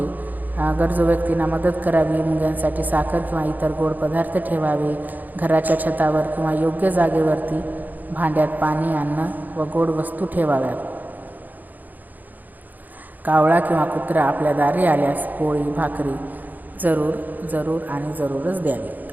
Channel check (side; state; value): left; late; 0.083 ms